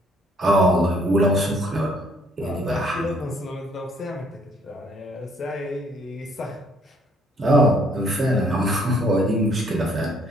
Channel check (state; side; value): normal; both; correlation 0.63